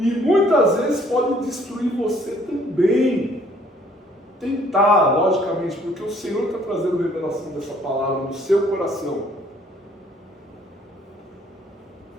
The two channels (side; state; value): both; normal; correlation 0.61